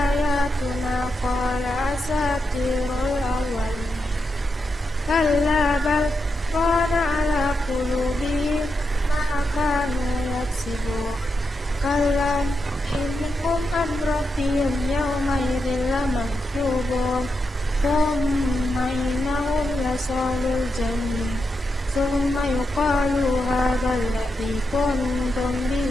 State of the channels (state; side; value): normal; both; correlation 0.85